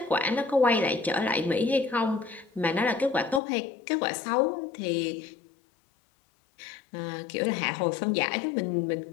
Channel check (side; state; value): right; drops out; at 3.4 s